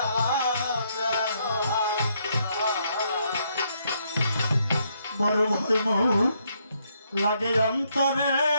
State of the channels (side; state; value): both; inverted; correlation -0.73